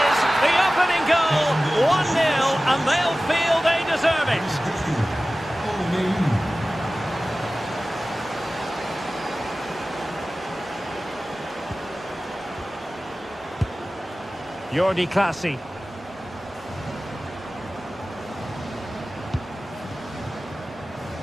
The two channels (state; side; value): normal; both; correlation 0.96